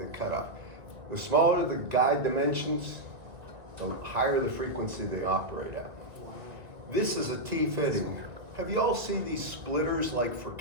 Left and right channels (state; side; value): late; left; 1.9 ms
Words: cutoff. The smaller the guide dimensions, the higher the frequency they operate at. This is a T-fitting. Have you all seen these splitters like for